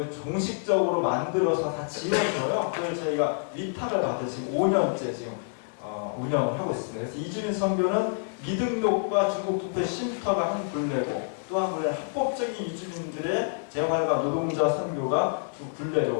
종식적으로 만들어서 다 지원줘요. 그걸 저희가 위탁을 받아 지금 5년째 지금 운영을 하고 있습니다. 그래서 이주민 선교는 미등록과 중국투표 쉼터가 한 굴레고, 또 한 굴레는 합법적인 이주민들의 재활과 노동자 선교가 두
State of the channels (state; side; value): silent; right; digital silence